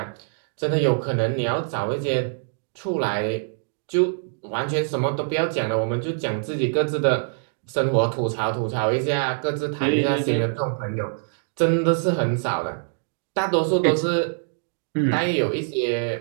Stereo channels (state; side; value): silent; left; digital silence